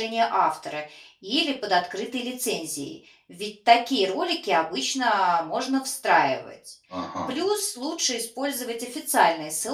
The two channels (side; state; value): both; identical; correlation 1.00